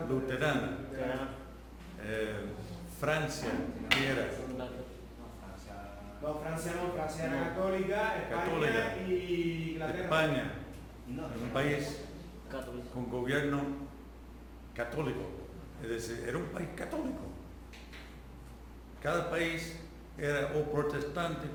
luterana, Francia, ¿qué era? No, Francia no, Francia era católica, España Católica. y Inglaterra. España, un país Católico. con gobierno católico, es decir, era un país católico. Cada país era o protestante o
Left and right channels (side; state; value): both; identical; correlation 1.00